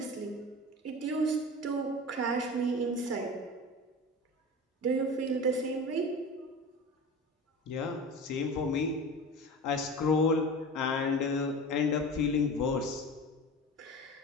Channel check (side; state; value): both; normal; correlation 0.32